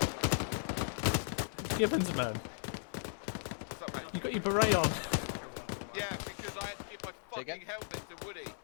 Gibbons, man. What's up, mate? You got your beret on. Yeah, because I had to give my fucking helmet to Woody.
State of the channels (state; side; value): silent; right; digital silence